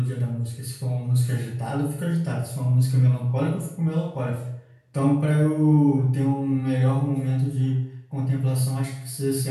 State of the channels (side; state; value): both; identical; correlation 1.00